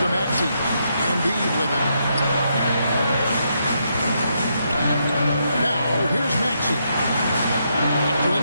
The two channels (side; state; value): both; inverted; correlation -0.79